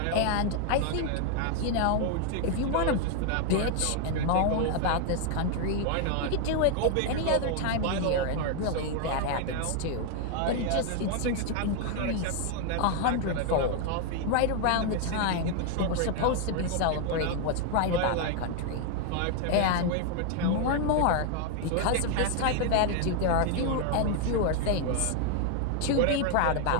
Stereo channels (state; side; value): different; both; correlation 0.00